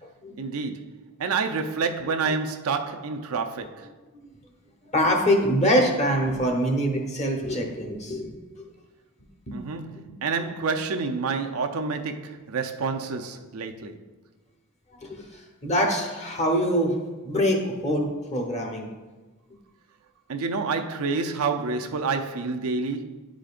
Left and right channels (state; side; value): normal; both; correlation 0.18